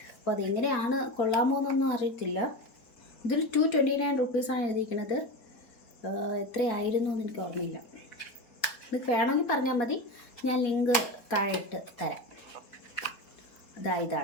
അപ്പോൾ അതെങ്ങനെയാണ്, കൊള്ളാമോ എന്നൊന്നും അറിയത്തില്ല. ഇതിൽ 229 റുപ്പീസാണ് എഴുതിയിരിക്കുന്നത്. എത്രയായിരുന്നു എന്ന് എനിക്ക് ഓർമ്മയില്ല. നിങ്ങൾക്ക് വേണമെങ്കിൽ പറഞ്ഞാൽ മതി, ഞാൻ ലിങ്ക് താഴെ ഇട്ട് തരാം.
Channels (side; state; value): right; late; 4.0 ms